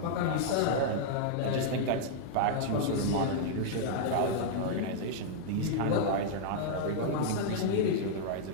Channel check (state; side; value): different; both; correlation -0.02